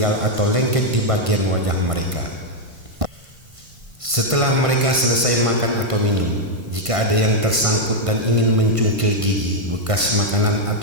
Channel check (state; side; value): late; left; 1.5 ms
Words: atau lengket di bagian wajah mereka. Setelah mereka selesai makan atau minum, jika ada yang tersangkut dan ingin mencungkil gigi bekas makanan